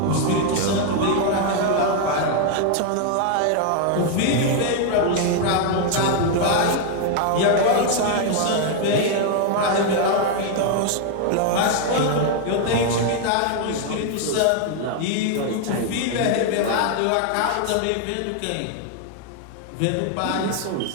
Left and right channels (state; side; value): different; both; correlation 0.00